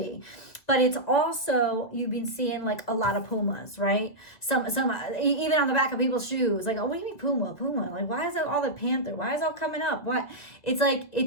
But it's also, you've been seeing like a lot of pumas, right? Some even on the back of people's shoes, like, oh, what do you mean puma? Like, why is that all the panther? Why is it all coming up? What? It's like,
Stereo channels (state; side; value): late; right; 2.1 ms